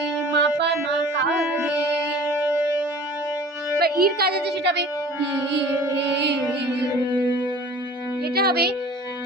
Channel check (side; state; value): both; normal; correlation 0.45